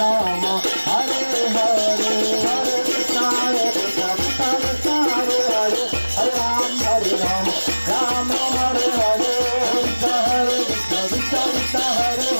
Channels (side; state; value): both; inverted; correlation -1.00